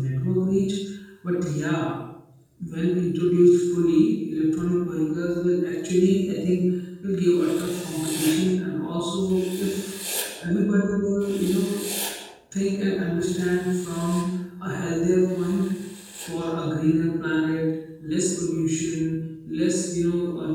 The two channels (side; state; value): both; identical; correlation 1.00